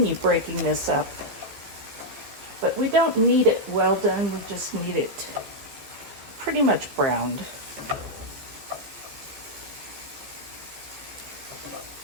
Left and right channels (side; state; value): left; late; 15 ms